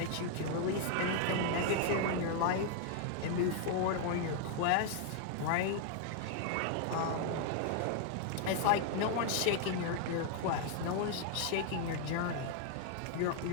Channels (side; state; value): both; different; correlation 0.00